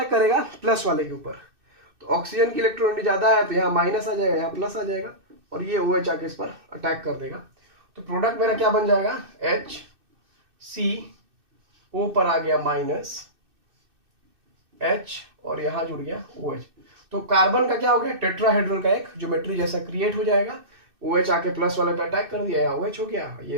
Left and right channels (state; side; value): late; left; 2.6 ms